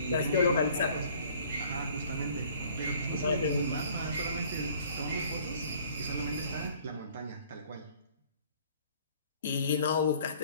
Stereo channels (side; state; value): both; inverted; correlation -0.55